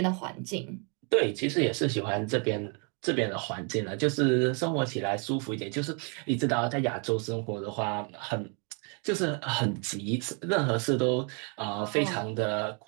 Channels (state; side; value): quieter; left; 36.6 dB